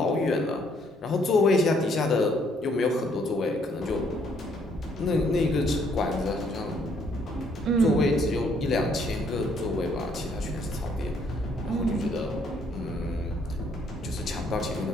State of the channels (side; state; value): both; normal; correlation 0.67